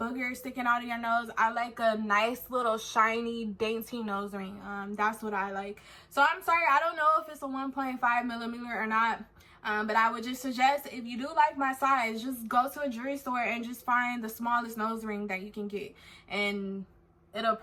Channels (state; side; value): identical; both; correlation 1.00